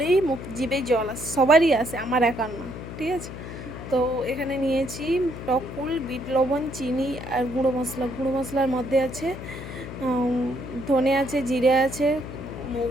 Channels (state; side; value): noise; left; hum, 10 dB below the sound